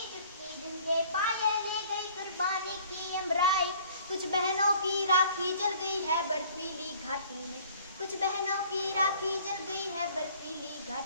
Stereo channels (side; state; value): both; inverted; correlation -0.54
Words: चुटकी झुमके पायल ले गई कुर्बानी की अमराई। कुछ बहनों की राखी जल गई है बर्फीली घाटी में, कुछ बहनों की राखी जल गई है बर्फीली